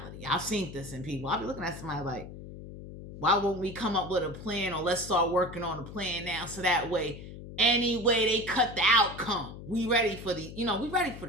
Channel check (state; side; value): noise; left; hum, 13 dB below the sound